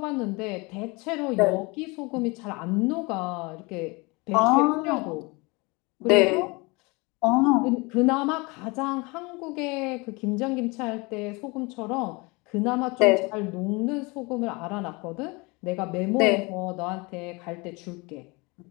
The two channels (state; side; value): quieter; right; 26.7 dB